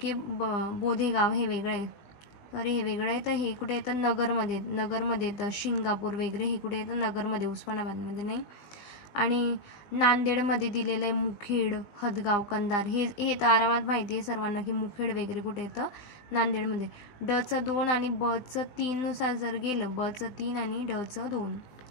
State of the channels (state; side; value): late; right; 20 ms